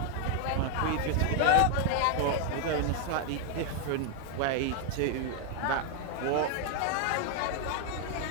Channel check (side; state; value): both; different; correlation 0.00